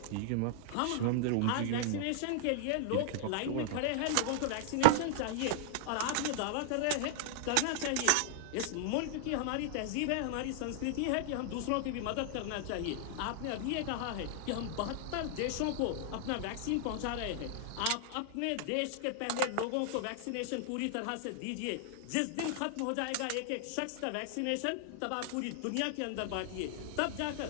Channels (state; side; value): different; both; correlation -0.01